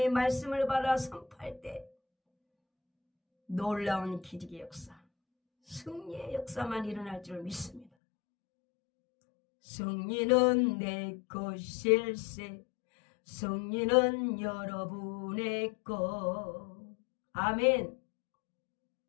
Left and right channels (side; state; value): right; drops out; at 7.9 s